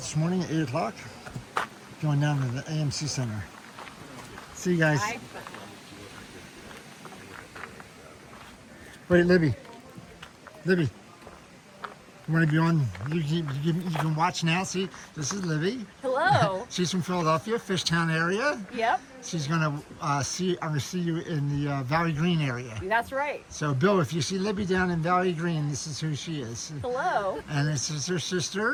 morning at 8 o'clock, going down to the AMC Center. See you guys. Bye. Wait, Libby. You want to be on? You can watch now. See, this is Libby. Hello. She's from Philadelphia, Fishtown area. Yep. She's gonna I'm gonna see you in the Valley Green area. That's right. So, Bill, if you see Libby down in Valley Green, this is who she is. Hello. And this is her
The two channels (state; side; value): identical; both; correlation 1.00